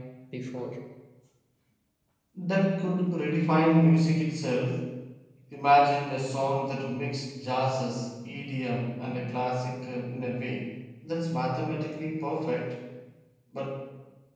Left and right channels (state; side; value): identical; both; correlation 1.00